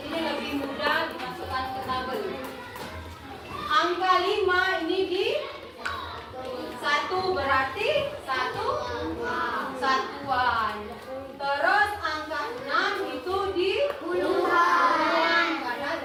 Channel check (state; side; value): identical; both; correlation 1.00